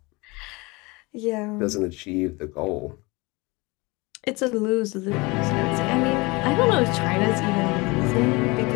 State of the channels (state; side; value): quieter; right; 25.2 dB